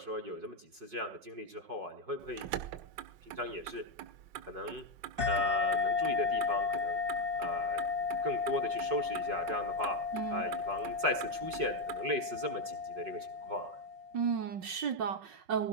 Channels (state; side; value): late; left; 5.4 ms